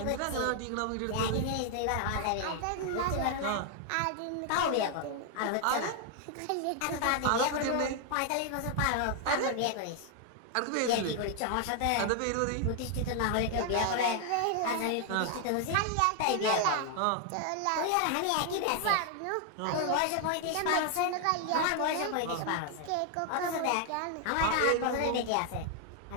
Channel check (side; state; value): both; different; correlation 0.00